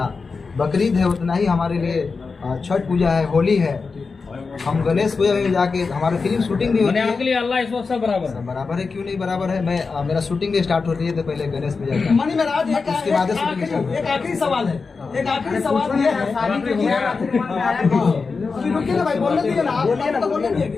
बकरीद है उतना ही हमारे लिए छठ पूजा है, होली है। हम गणेश पूजा में जाके हमारी फिल्म शूटिंग भी होती है। आपके लिए अल्लाह इस वक्त सब बराबर है। बराबर है, क्यों नहीं बराबर है। मैं मेरा शूटिंग भी स्टार्ट होती है तो पहले गणेश पूजा का, मनी महाराज, उसके बाद एक आखिरी सवाल है, एक आखिरी सवाल ये है। अभी रुकिए ना भाई, बोलने दीजिए ना, आप तो बोलने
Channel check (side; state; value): right; quieter; 4.6 dB